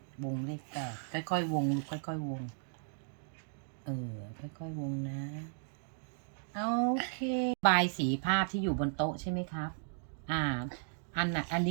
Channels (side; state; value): left; silent; digital silence